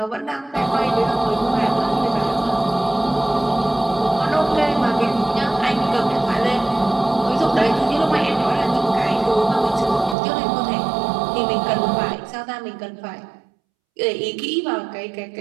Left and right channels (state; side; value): drops out; left; at 10.2 s